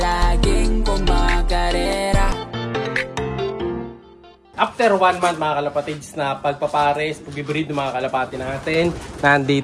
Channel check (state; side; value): identical; both; correlation 1.00